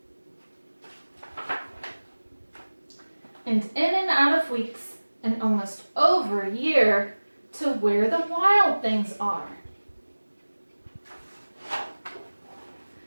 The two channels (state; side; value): inverted; both; correlation -1.00